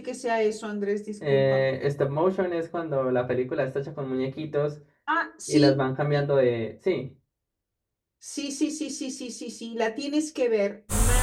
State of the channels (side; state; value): both; identical; correlation 1.00